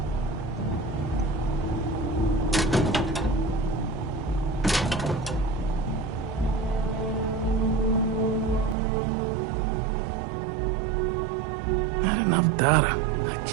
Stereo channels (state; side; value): drops out; left; at 8.8 s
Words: Not enough data. I